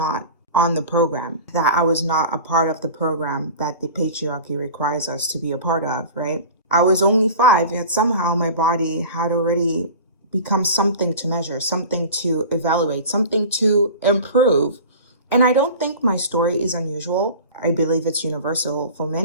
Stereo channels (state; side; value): inverted; both; correlation -0.37